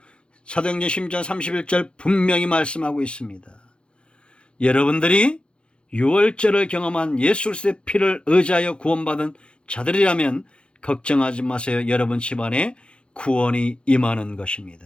사도행전 10장 31절 분명히 말씀하고 있습니다. 여러분들이 유월절을 경험한 예수 그리스도의 피를 의지하여 구원받은 자들이라면 걱정하지 마세요. 여러분 집안에 구원이 임하는 것입니다.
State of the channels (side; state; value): right; late; 0.056 ms